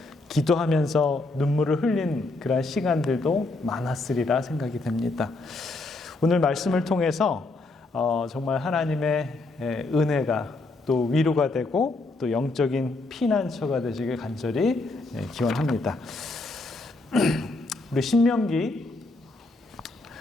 기도하면서 눈물을 흘린 그런 시간들도 많았으리라 생각이 됩니다. 오늘 말씀을 통해서 정말 하나님의 은혜가 또 위로가 되고 또 영적인 피난처가 되시길 간절히 기원합니다. 우리 신명기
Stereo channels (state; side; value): quieter; right; 3.2 dB